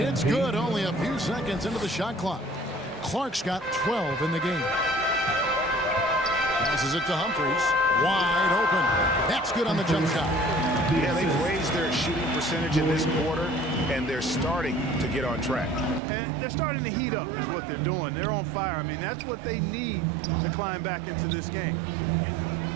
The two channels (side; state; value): left; drops out; at 16.0 s